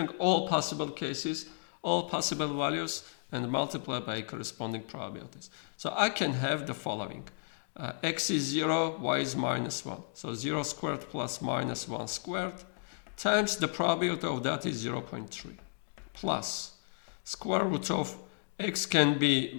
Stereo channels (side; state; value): right; silent; digital silence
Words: all possible cases, all possible values, and multiply by corresponding probabilities. So I can have the following. X is 0, y is minus 1. So 0 squared plus minus 1 squared times the probability of that is 0.3 plus square root of x can be